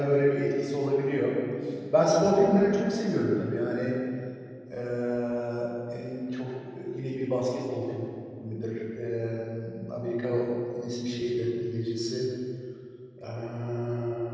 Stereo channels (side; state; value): both; identical; correlation 1.00